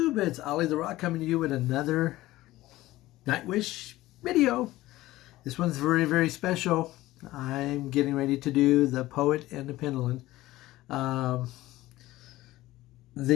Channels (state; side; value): quieter; right; 17.0 dB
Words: It's Ollie the Rock coming to you with another Nightwish video. This one's very, very special. I'm getting ready to do the Poet and the Pendulum.